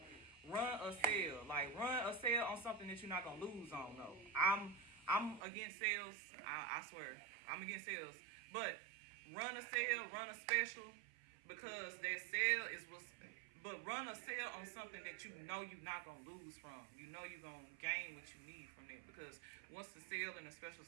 Run a sale on something that you're not gonna lose on. No, I'm against sales. I swear, I'm against sales. But run a sale, run a special, because that sale is what's. But run a sale on something that you're not gonna lose from. You're gonna gain what you need from it. Because once the sale and the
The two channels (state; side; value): drops out; left; at 5.4 s